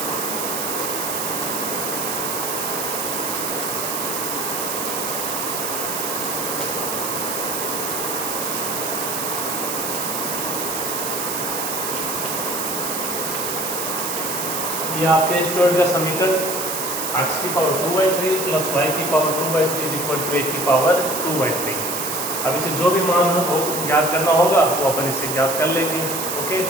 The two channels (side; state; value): right; noise; hiss, 2 dB below the sound